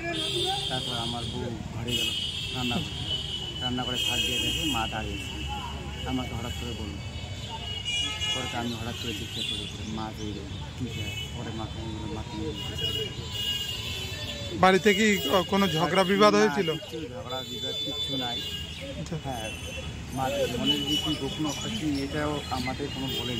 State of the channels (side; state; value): both; identical; correlation 1.00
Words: তারপর আমার বউ ঘরে গেল রান্না করে থাক দিয়ে দেখে মা দাঁড়িয়েছে। আমাকে হঠাৎ করে বলল, পরে আমি হঠাৎ করে জিজ্ঞাসা করি মা দিয়ে গেল ঠিক আছে। পরে মাকে বাড়িতে কি কোনো ঝগড়া বিবাদ হয়েছিল? ঝগড়া বিবাদ কিচ্ছু নাই। হ্যাঁ, মাদের মনের যে কি গোপন কি, এটাও আমাদের কোনো